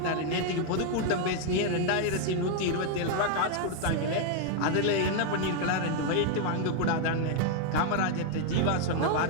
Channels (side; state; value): both; different; correlation 0.00